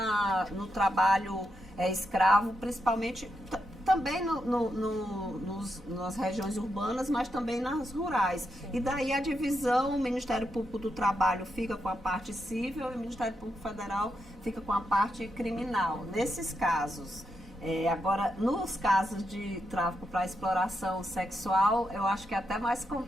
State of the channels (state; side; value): normal; both; correlation 0.83